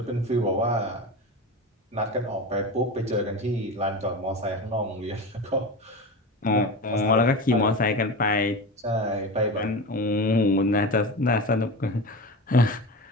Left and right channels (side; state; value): both; normal; correlation 0.27